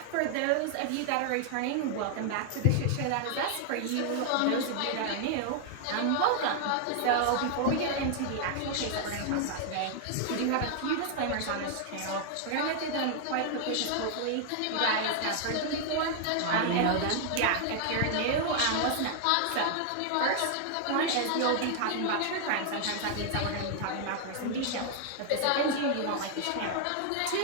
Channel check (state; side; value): different; both; correlation 0.00